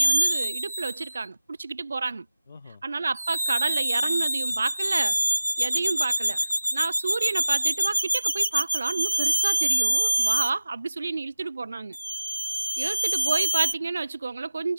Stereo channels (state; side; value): inverted; both; correlation -0.96